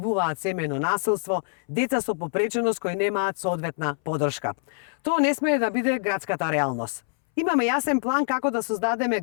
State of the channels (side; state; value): right; silent; 62 dB below the other